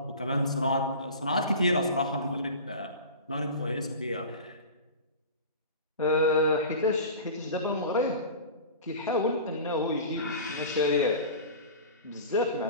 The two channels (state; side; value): inverted; both; correlation -0.35